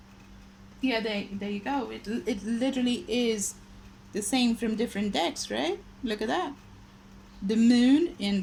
Yeah, there you go. It literally is the same from different decks, right? Look at that. The moon and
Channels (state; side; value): identical; both; correlation 1.00